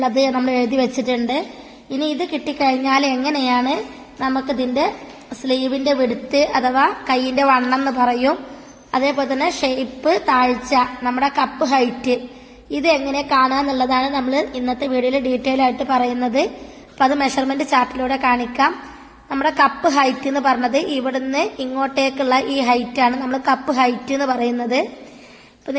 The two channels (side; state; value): both; identical; correlation 1.00